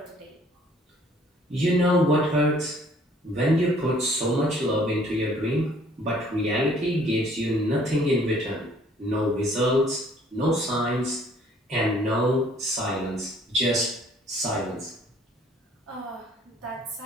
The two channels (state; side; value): normal; both; correlation 0.58